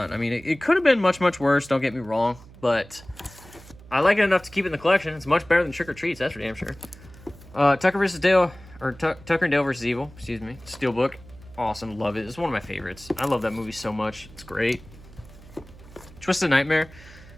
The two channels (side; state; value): right; noise; hum, 21 dB below the sound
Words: I mean, it could have been much, much worse, don't get me wrong, but I like it enough to keep it in the collection. It's much better than Trick or Treats, that's for damn sure. Tucker vs. Dale, or Tucker and Dale vs. Evil, excuse me. Steelbook, awesome, love it. It's one of my favorites. I love that movie so much. It's great. Twisted Nightmare.